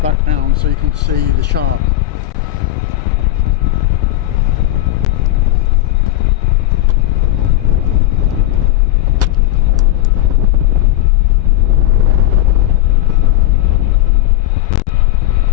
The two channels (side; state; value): right; quieter; 15.2 dB